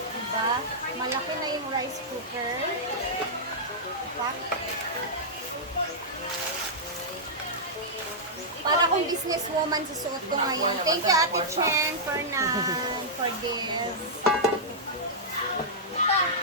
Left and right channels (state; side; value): normal; both; correlation -0.11